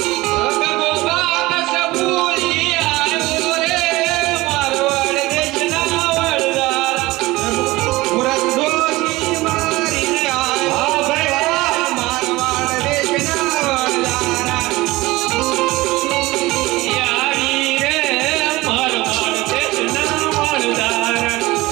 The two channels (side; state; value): left; quieter; 19.9 dB